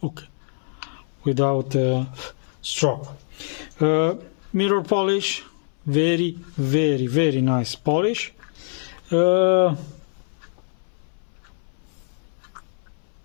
okay, without strop. Mirror polish, very, very, very nice polish.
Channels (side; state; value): right; silent; 62 dB below the other